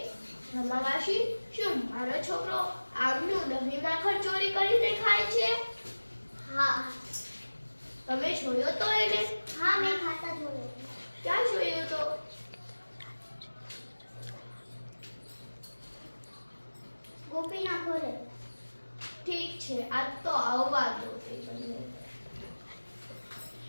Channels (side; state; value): both; inverted; correlation -1.00